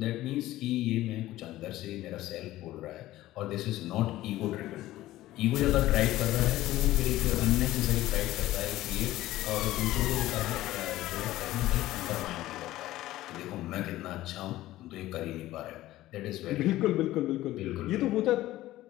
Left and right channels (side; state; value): right; quieter; 15.8 dB